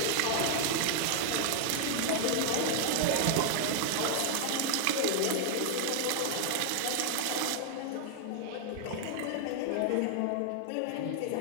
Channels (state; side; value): different; both; correlation 0.00